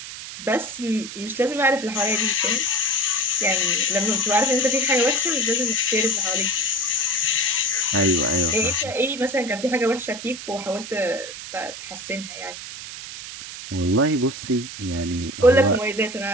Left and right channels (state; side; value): noise; right; hiss, 11 dB below the sound